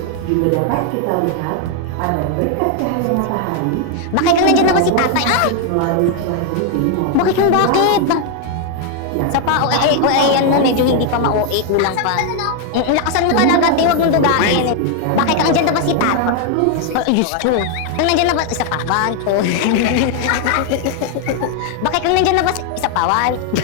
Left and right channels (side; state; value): both; different; correlation 0.00